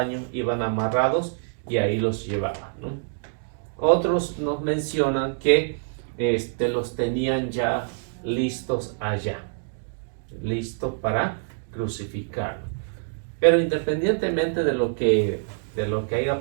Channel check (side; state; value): left; silent; digital silence